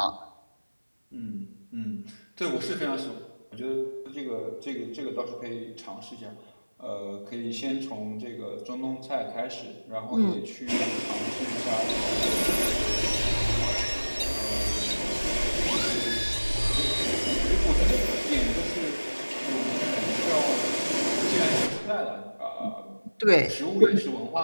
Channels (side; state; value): both; inverted; correlation -1.00